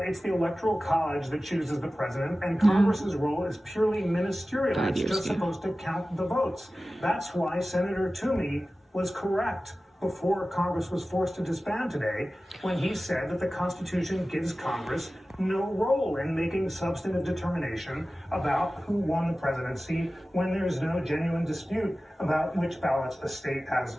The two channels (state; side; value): normal; both; correlation 0.96